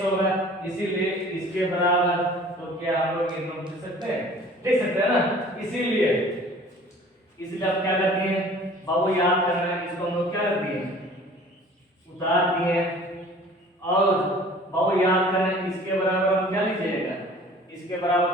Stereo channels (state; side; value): normal; both; correlation 0.48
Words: होगा, इसीलिए इसके बराबर, तो क्या हम लोग ये नोट लिख सकते हैं ना, इसीलिए आप क्या करते हैं बाबू याद करना है, इसको हम लोग क्या करते हैं उतार दिए, और बाबू याद करना है इसके बराबर हम क्या लीजिएगा, इसके